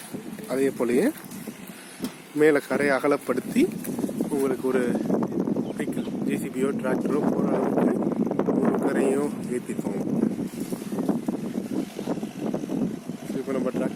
அதே போலயே மேலே கரையை அகலப்படுத்தி உங்களுக்கு ஒரு வெஹிக்கிள் ஜேசிபியோ டிராக்டரோ போகிற அளவுக்கு ஒரு கரையும் ஏற்றிருக்கோம். இப்போ நம்ம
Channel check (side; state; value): both; identical; correlation 1.00